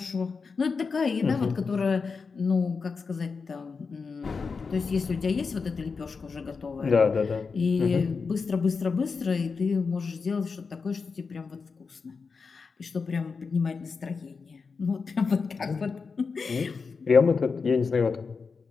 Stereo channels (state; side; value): quieter; right; 5.0 dB